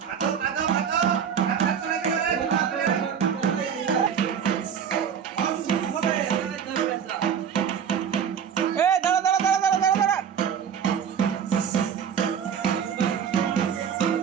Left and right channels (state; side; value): quieter; left; 7.8 dB